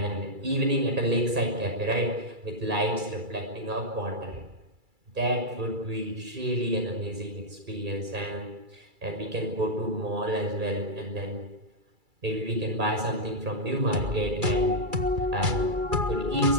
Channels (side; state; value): left; late; 2.3 ms